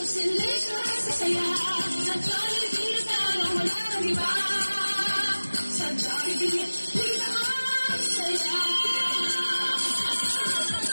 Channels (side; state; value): both; inverted; correlation -1.00